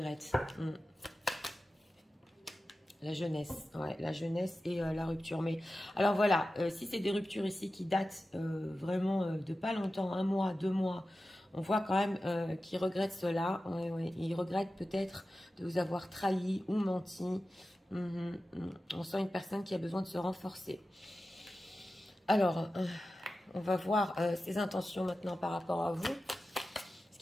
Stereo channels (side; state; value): both; normal; correlation 0.94